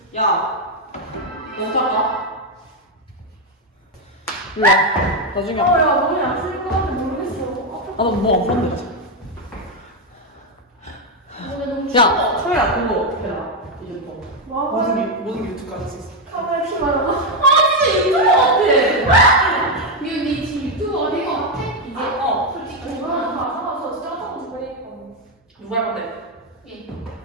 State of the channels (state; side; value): normal; both; correlation 0.04